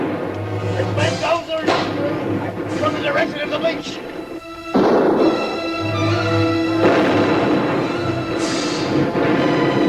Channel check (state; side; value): identical; both; correlation 1.00